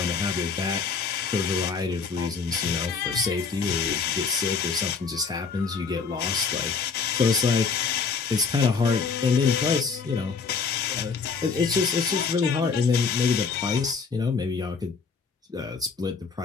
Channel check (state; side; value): quieter; right; 5.2 dB